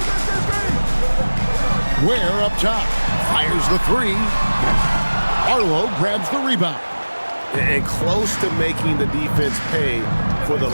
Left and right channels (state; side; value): inverted; both; correlation -1.00